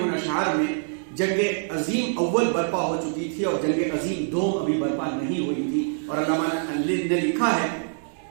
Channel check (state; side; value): silent; left; digital silence